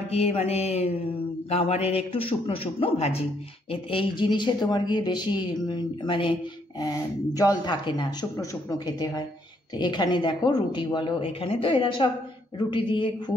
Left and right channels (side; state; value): both; normal; correlation 0.71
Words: গিয়ে মানে গাওয়ারের একটু শুকনো শুকনো ভাজি, এই জিনিসে তোমার গিয়ে বেশি মানে জল থাকে না, শুকনো শুকনো খেতে হয়। তো এখানে দেখো রুটি বলো, এখানে তো এরা সব রুটি দিয়ে